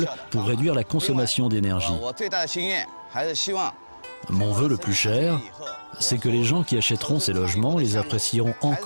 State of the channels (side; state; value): both; inverted; correlation -1.00